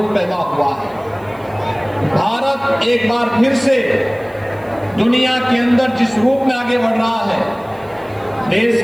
पैदा हुआ है। भारत एक बार फिर से दुनिया के अंदर जिस रूप में आगे बढ़ रहा है, देश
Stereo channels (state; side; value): noise; right; hiss, 30 dB below the sound